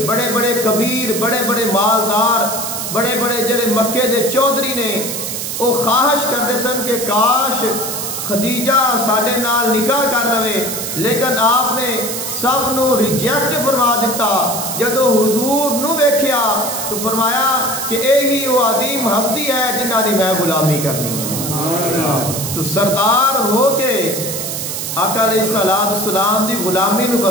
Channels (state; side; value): noise; right; hiss, 4 dB below the sound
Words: بڑے بڑے کبیر بڑے بڑے مالدار بڑے بڑے جڑے مکے دے چودھری نے وہ خواہش کرتے سن کہ کاش خدیجہ ساڈے نال نکاح کر لوے لیکن آپ نے سب نو ریجیکٹ فرما دیتا. جدو حضور نو ویکھیا تو فرمایا کہ اے ہی وہ عظیم ہستی ہے جنہاں دی میں غلامی کرنی ہے. تو سردار ہو کے آقا علیہ السلام دی غلامی نو